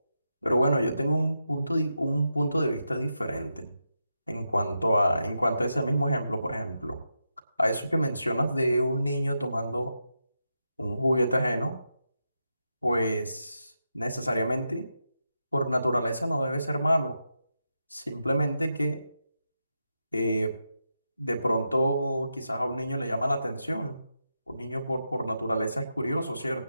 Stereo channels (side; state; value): both; inverted; correlation -0.86